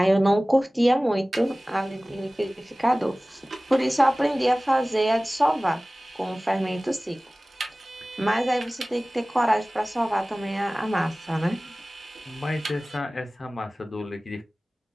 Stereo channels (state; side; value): normal; both; correlation 0.98